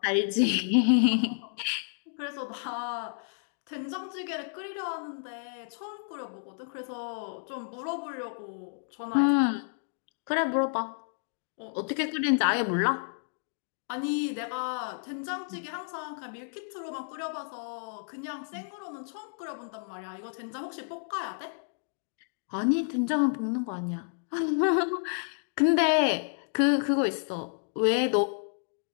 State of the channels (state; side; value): silent; right; digital silence